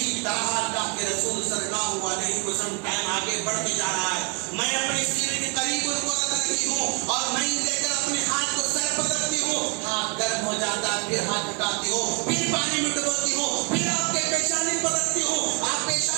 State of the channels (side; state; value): left; quieter; 32.8 dB